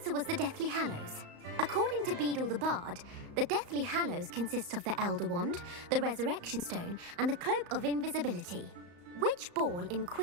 was the Deathly Hallows. According to Beadle the Bard, the Deathly Hallows consist of the Elder Wand, the Resurrection Stone, and the Cloak of Invisibility. Which ball in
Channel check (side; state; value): left; late; 35 ms